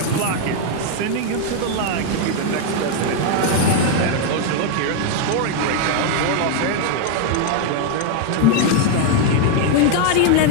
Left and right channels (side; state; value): both; different; correlation 0.00